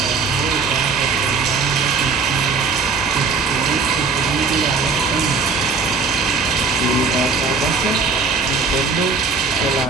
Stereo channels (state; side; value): quieter; left; 4.6 dB